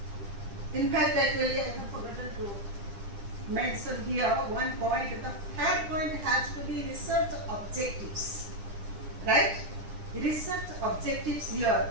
In fact, actually, I have forgotten to mention here one point. The third point has to be research objectives. Right? Research objectives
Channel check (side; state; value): left; late; 9.9 ms